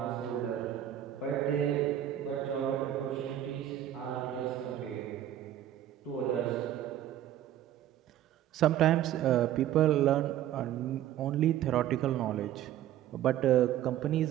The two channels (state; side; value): quieter; left; 11.9 dB